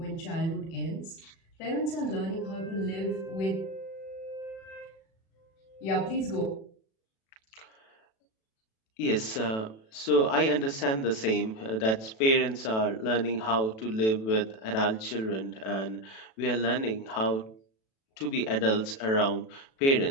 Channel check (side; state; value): right; late; 36 ms